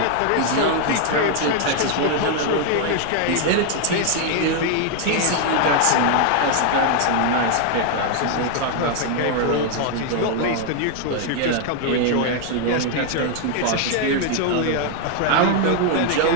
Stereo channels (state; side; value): different; both; correlation 0.00